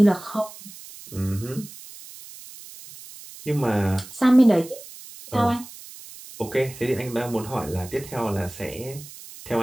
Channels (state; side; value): noise; right; hiss, 17 dB below the sound